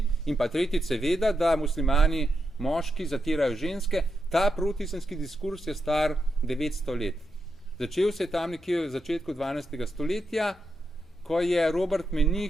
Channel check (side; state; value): both; normal; correlation 0.85